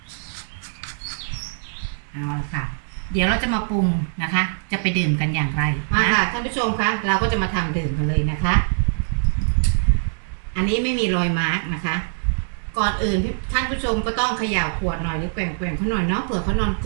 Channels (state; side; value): silent; left; digital silence